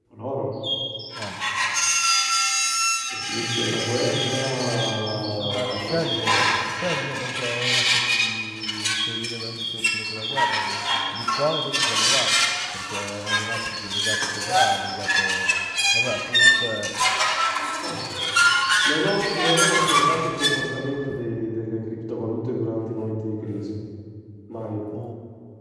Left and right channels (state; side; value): identical; both; correlation 1.00